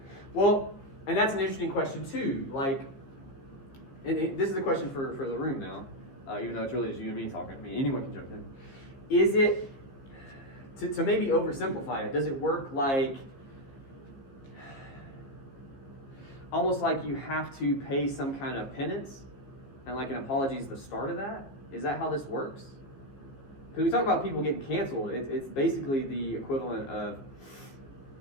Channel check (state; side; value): late; right; 15 ms